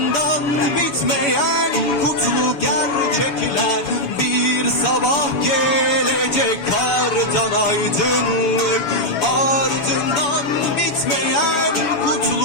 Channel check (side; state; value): right; late; 7.1 ms